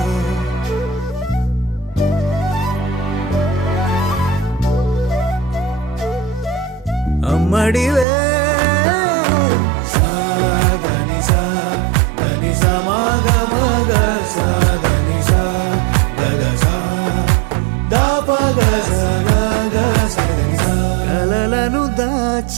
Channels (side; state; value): left; drops out; at 8.1 s